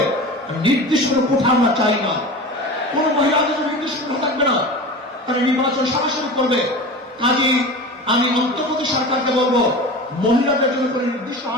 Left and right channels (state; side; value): normal; both; correlation 0.32